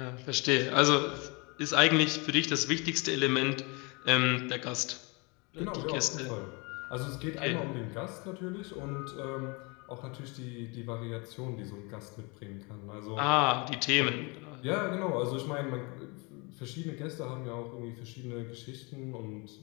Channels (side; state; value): right; quieter; 29.4 dB